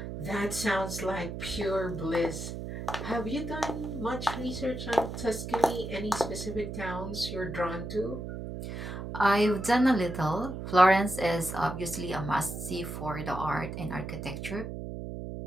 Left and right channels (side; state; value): right; noise; hum, 7 dB below the sound